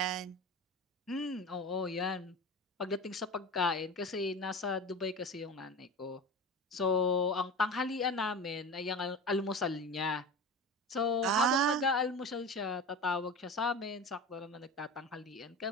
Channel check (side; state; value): both; normal; correlation 0.31